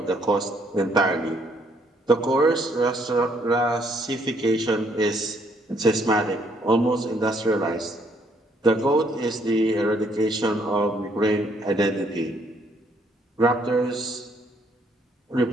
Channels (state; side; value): normal; both; correlation 0.68